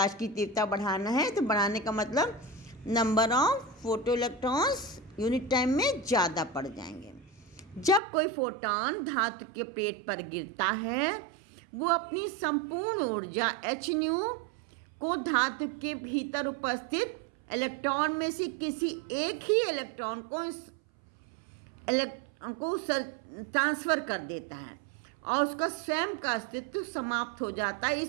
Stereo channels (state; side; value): drops out; left; at 8.0 s